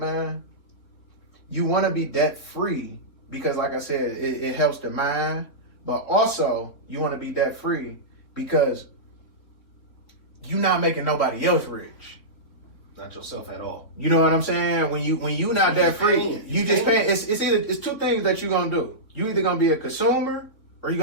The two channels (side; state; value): right; late; 3.7 ms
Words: you want to be debt free because, like I said, it helps the mind. But also, you want to be debt free because you're not making nobody else rich. Not yourself at all. You know what I'm saying? When you not debt free, you just paying. It's two things that you're gonna do. You either gonna be a consumer or you're